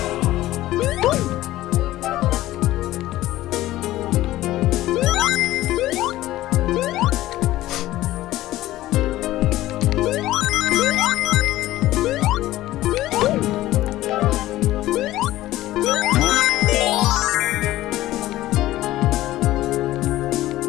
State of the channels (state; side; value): quieter; right; 15.6 dB